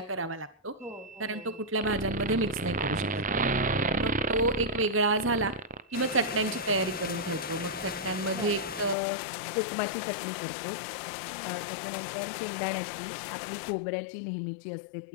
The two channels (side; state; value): right; drops out; at 9.0 s